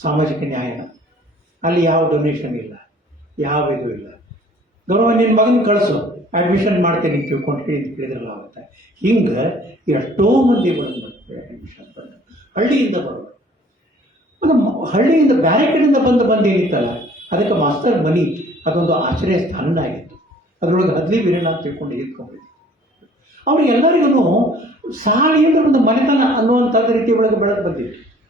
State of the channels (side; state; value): both; normal; correlation 0.54